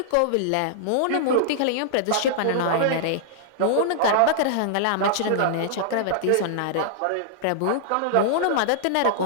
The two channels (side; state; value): both; different; correlation -0.01